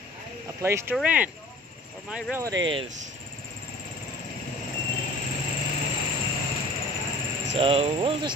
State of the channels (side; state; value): both; normal; correlation 0.46